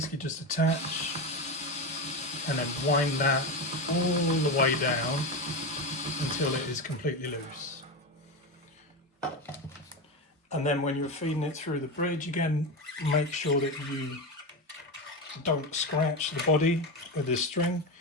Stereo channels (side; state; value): both; normal; correlation 0.18